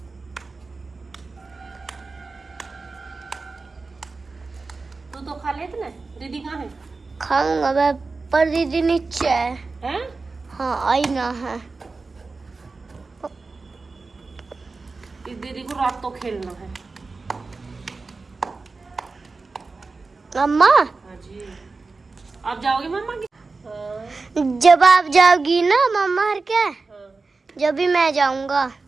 तू तो खा लेते ना। दीदी कहाँ है? खाऊंगा मैं, पर दीदी नीचे है। हैं? हाँ आई ना है। इस दीदी को रात तो खेलना है। मम्मा हाँ जी, आप जाओगे मम्मा की? हाँ। जब आप जाओगी ना मम्मा हर क्या, हाँ। जब भी मैं जाऊंगा।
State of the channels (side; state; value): left; quieter; 3.9 dB